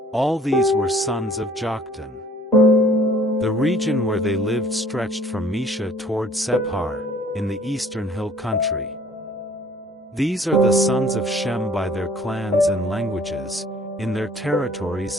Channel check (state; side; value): normal; both; correlation 0.54